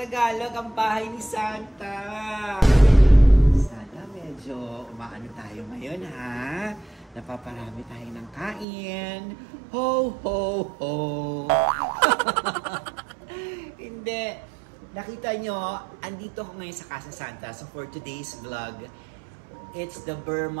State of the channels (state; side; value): drops out; left; at 8.7 s